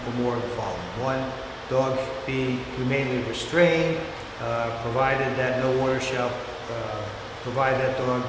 or more of the following. One, dog be humanely restrained, provided that no order shall provide that dog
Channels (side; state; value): both; identical; correlation 1.00